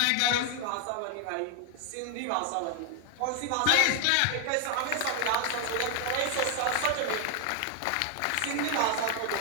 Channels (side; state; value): both; different; correlation 0.00